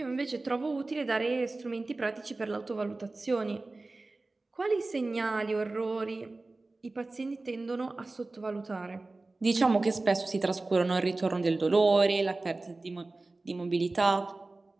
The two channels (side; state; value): left; quieter; 3.2 dB